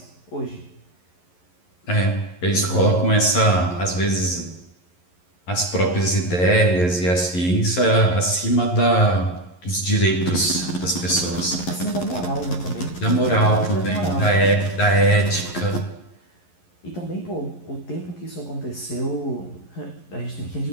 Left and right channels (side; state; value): right; late; 11 ms